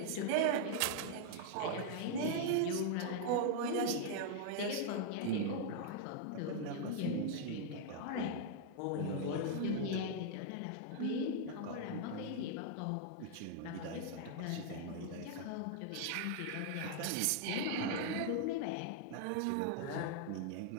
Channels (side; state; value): both; different; correlation -0.01